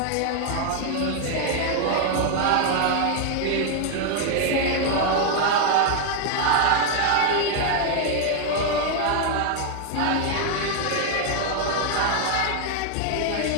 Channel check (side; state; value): both; different; correlation 0.00